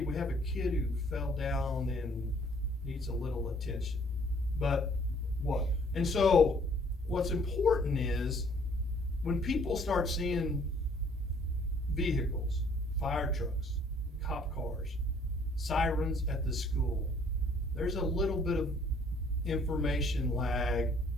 we have a kid who fell down and needs a little attention. But what? And so what's important is when people start seeing vehicles, fire trucks, cop cars, sirens at the school, there's a little bit of information lag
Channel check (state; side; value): normal; both; correlation 0.60